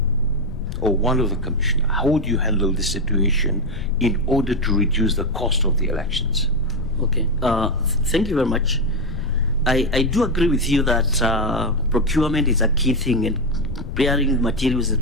or one of the commissioners, how would you handle this situation in order to reduce the cost of the elections? Okay, thank you very much. I do agree with you that procurement is a key thing, and preparing materials is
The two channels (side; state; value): left; noise; rumble, 8 dB below the sound